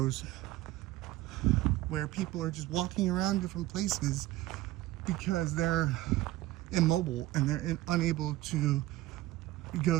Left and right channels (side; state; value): left; quieter; 16.5 dB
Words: where people are just walking around different places because they're immobile and they're unable to